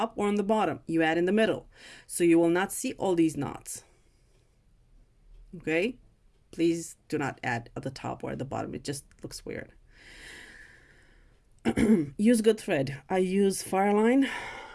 or on the bottom. You add in the middle. So you will not see all these knots. Okay? Please do not add at the top or at the bottom. It just looks weird. Use good thread. I use Fireline.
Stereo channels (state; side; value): identical; both; correlation 1.00